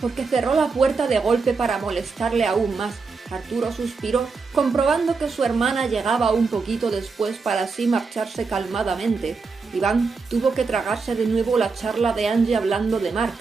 cerró la puerta de golpe para molestarle aún más. Arturo suspiró, comprobando que su hermana llegaba un poquito después para así marcharse calmadamente. Iván tuvo que tragarse de nuevo la charla de Angie hablando de Mark.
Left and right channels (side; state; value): left; quieter; 4.6 dB